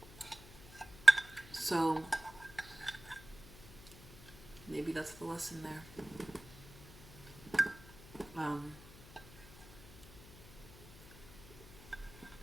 So maybe that's the lesson there.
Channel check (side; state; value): left; noise; hum, 19 dB below the sound